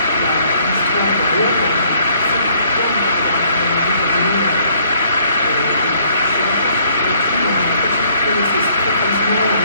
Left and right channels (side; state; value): both; inverted; correlation -0.63